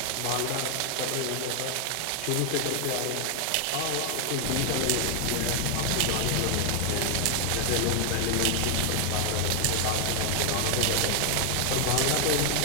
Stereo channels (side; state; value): both; different; correlation 0.00